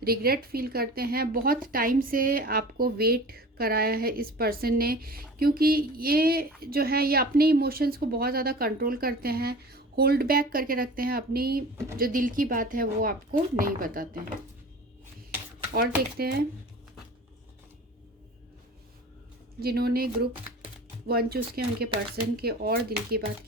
रिग्रेट फील करते हैं। बहुत टाइम से आपको वेट कराया है इस पर्सन ने, क्योंकि ये जो है ये अपने इमोशंस को बहुत ज़्यादा कंट्रोल करते हैं, होल्ड बैक करके रखते हैं, अपनी जो दिल की बात है वो आपको नहीं बताते हैं। और देखते हैं जिन्होंने ग्रुप 1 चूज़ किया उनके पर्सन के और दिल की बात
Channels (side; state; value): both; normal; correlation 0.39